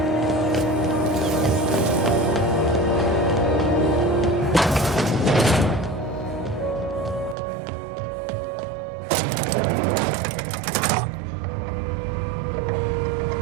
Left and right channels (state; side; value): drops out; left; at 7.4 s